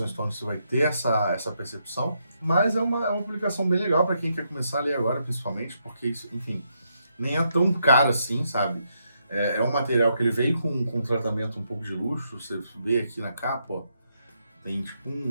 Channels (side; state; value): both; inverted; correlation -0.79